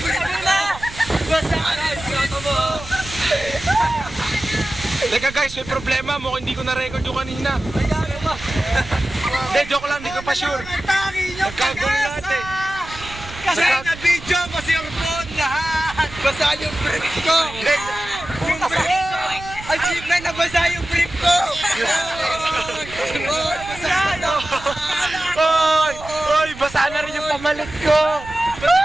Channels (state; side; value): noise; right; rumble, 15 dB below the sound